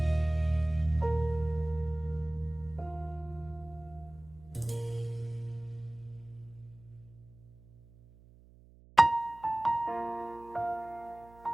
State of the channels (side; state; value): right; noise; hum, 24 dB below the sound